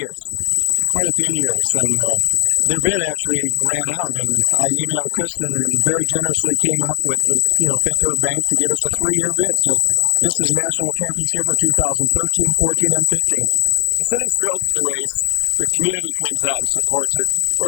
Quite a few years, and their bid actually ran out, and I emailed Kristen and very generously came up with the Fifth Third Bank to give us a 3-year bid. So this is a national championship for 2013, 14, and 15. The city's thrilled with the race. The community comes out and supports it. We're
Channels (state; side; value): silent; right; digital silence